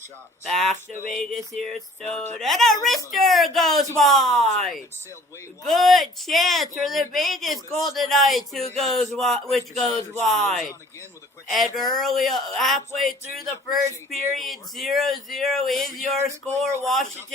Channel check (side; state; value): both; normal; correlation 0.52